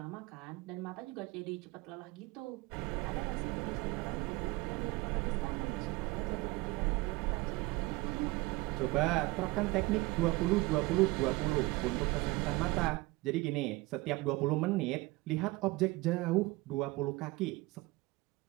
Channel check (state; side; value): quieter; left; 22.1 dB